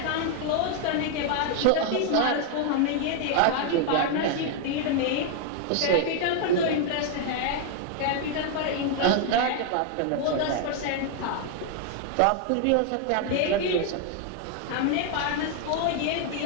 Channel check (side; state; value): both; different; correlation 0.00